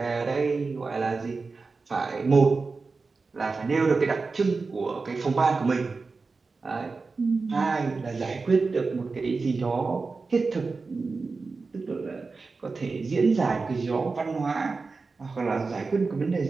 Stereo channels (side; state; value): left; quieter; 4.2 dB